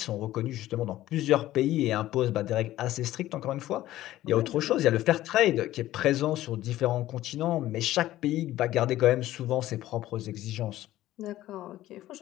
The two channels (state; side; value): quieter; right; 14.7 dB